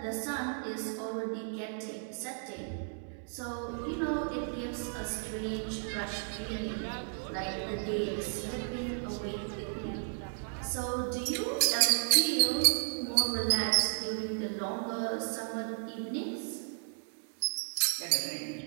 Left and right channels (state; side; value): silent; left; digital silence